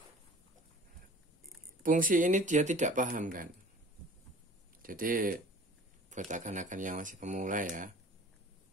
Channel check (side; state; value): both; normal; correlation 0.45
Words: fungsi ini dia tidak paham kan. Jadi buat akan-akan yang masih pemula ya,